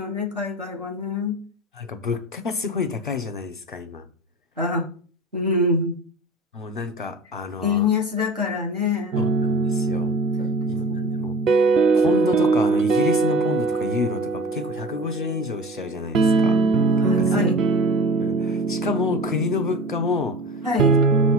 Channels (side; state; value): both; normal; correlation 0.37